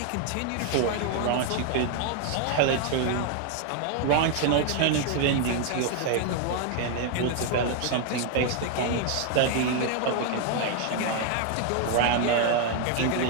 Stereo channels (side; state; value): both; different; correlation 0.00